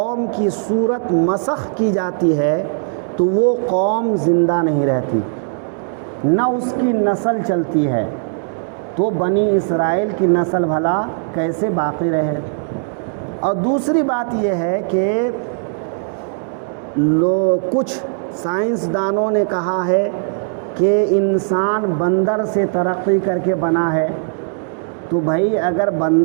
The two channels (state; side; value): silent; left; digital silence